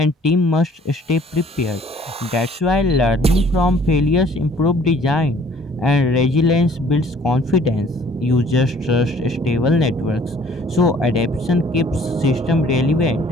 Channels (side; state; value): both; normal; correlation 0.56